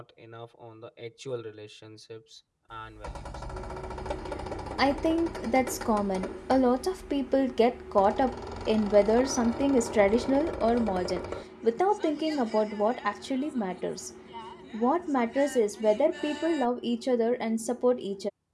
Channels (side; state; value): both; identical; correlation 1.00